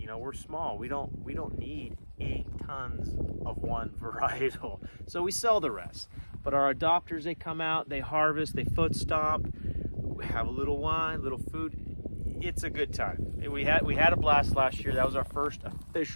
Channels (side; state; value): both; inverted; correlation -1.00